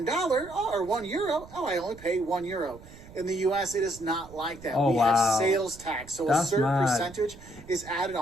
€1, I only pay €1. In the U.S., it is not like that. We have sales tax. So a certain percentage is added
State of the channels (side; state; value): right; noise; rumble, 19 dB below the sound